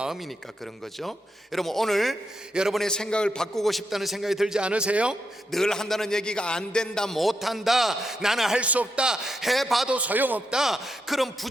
그런 거죠. 여러분, 오늘 여러분의 생각을 바꾸고 싶다는 생각이 들지 않으세요? 늘 한다는 얘기가 안 된다, 못한다, 나는 할 수 없다, 해봐도 소용없다, 그런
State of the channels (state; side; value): normal; both; correlation 0.83